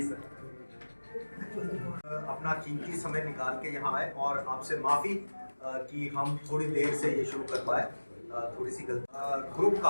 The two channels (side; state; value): both; inverted; correlation -1.00